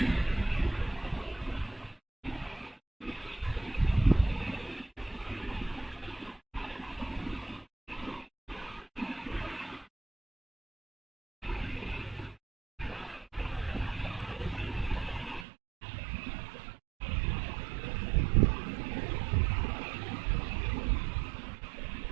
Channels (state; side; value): drops out; left; at 15.5 s